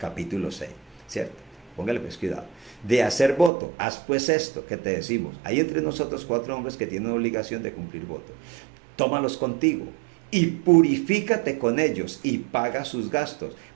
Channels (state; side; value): drops out; left; at 3.5 s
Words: 6, ¿cierto? Póngale pues cuidado. De hacer voto, haz pues esto que te decimos. Hay entre nosotros 4 hombres que tienen obligación de cumplir voto. Tómalos contigo y purifícate con ellos y paga sus gastos,